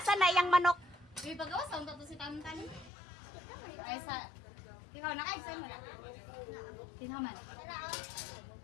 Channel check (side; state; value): right; drops out; at 2.9 s